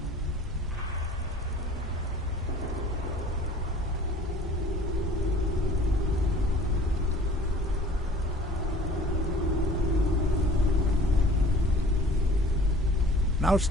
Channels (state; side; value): normal; both; correlation 0.49